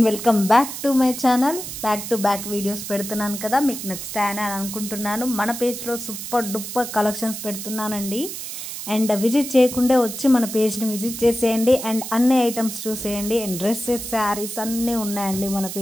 welcome back to my channel. Back to back videos పెడుతున్నాను కదా, మీకు నచ్చుతాయని అనుకుంటున్నాను. మన పేజ్లో సూపర్ డూపర్ కలెక్షన్స్ పెడుతున్నానండి. అండ్ విజిట్ చేయకుండా వచ్చి మన పేజ్ని విజిట్ చేసేయండి అండ్ అన్ని ఐటమ్స్ చూసేయండి. అండ్ డ్రెస్సెస్, శారీస్ అన్నీ ఉన్నాయండి మన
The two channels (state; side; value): noise; right; hiss, 8 dB below the sound